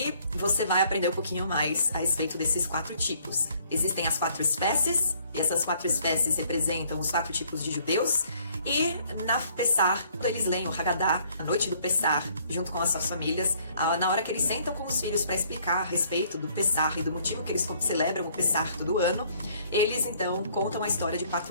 você vai aprender um pouquinho mais a respeito desses 4 tipos. Existem as 4 espécies, e essas 4 espécies representam os 4 tipos de judeus. E na Pessah, quando eles leem o Haggadah, a noite do Pessah, junto com as suas famílias, na hora que eles sentam com os filhos para explicar a respeito do Pessah e do motivo que eles celebram o Pessah todo ano, eles então contam a história de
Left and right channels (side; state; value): both; inverted; correlation -0.62